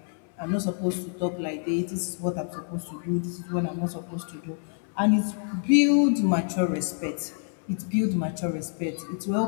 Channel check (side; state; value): right; silent; 60 dB below the other